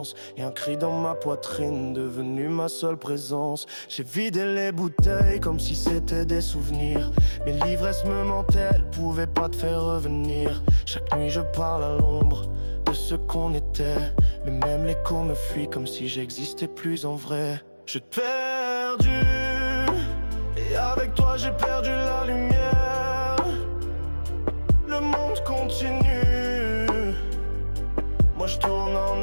et un cri dans ma poitrine devenu ma seule présence. J'ai vidé les bouteilles comme si c'était des souvenirs, mais l'ivresse me mentait, elle pouvait pas te faire revenir. Chaque nuit je parle à l'ombre de ce qu'on était, mais même l'écho me fuit comme si j'existais plus en vrai. Je t'ai perdu, et avec toi j'ai perdu la lumière. Le monde continue, moi je tourne en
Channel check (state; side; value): inverted; both; correlation -1.00